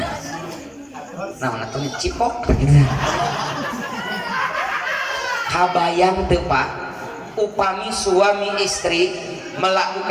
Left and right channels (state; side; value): identical; both; correlation 1.00